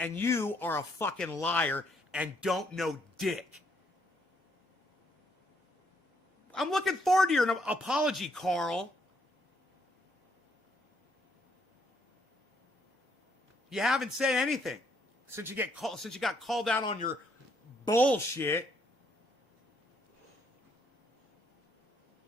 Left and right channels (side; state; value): both; normal; correlation 0.71